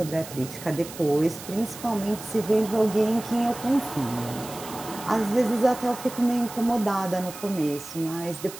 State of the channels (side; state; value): right; noise; hiss, 14 dB below the sound